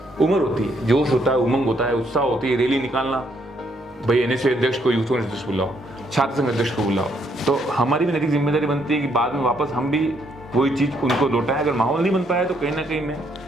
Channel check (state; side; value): normal; both; correlation 0.71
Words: उम्र होती है, जोश होता है, उमंग होता है, उत्साह होती है, रैली निकालना, भाई एनएसए अध्यक्ष को, यूथ कांग्रेस अध्यक्ष बुलाओ, छात्र संघ अध्यक्ष को बुलाओ। तो हमारी भी नैतिक जिम्मेदारी बनती है कि बाद में वापस हम भी वही चीज़ उनको लौटाएं। अगर माहौल नहीं बन पाया तो कहीं ना कहीं मैं